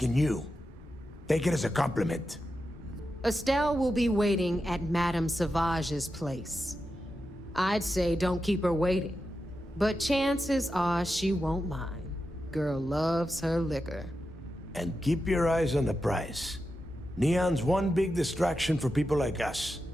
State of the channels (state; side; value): normal; both; correlation 0.89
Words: you. Take it as a compliment. Estelle will be waiting at Madame Sauvage's place. I'd say don't keep her waiting, but chances are she won't mind. Girl loves her liquor. And keep your eyes on the prize. Neon's one big distraction for people like us,